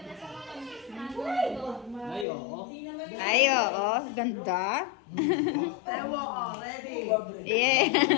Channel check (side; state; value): right; drops out; at 2.2 s